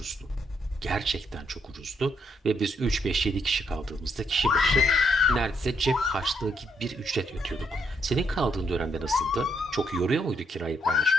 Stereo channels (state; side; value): normal; both; correlation 0.74